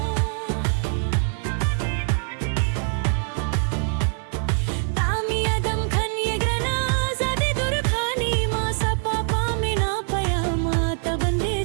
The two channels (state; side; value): silent; left; 63 dB below the other